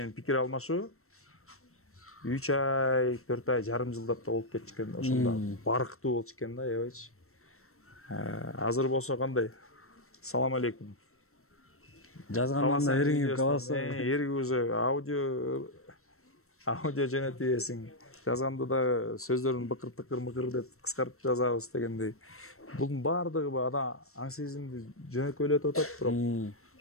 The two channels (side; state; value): right; late; 0.63 ms